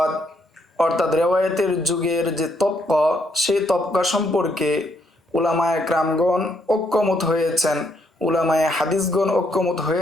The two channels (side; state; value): both; normal; correlation 0.73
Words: অর্থাৎ রেওয়ায়াতের যুগের যে তবকা, সেই তবকা সম্পর্কে উলামায়ে কেরামগণ ঐক্যমত হয়েছেন, উলামায়ে হাদিসগণ ঐক্যমত